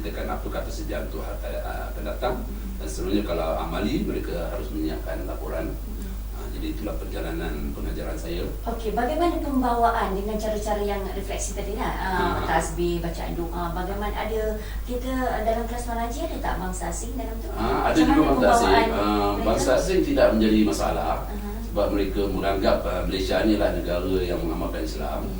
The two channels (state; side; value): identical; both; correlation 1.00